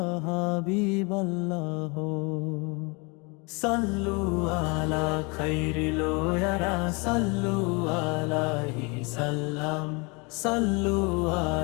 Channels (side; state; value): right; quieter; 30.1 dB